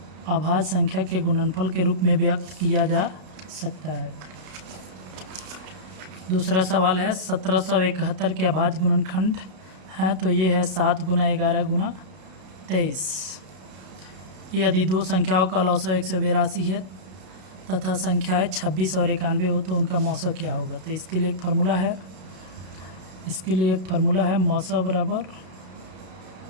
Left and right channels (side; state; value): left; late; 32 ms